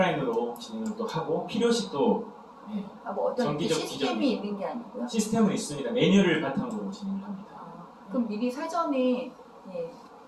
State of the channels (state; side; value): identical; both; correlation 1.00